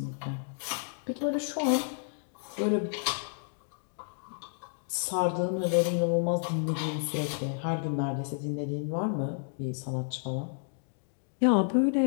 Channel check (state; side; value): silent; right; digital silence